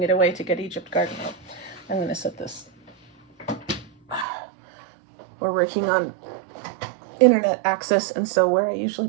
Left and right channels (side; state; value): left; drops out; at 4.2 s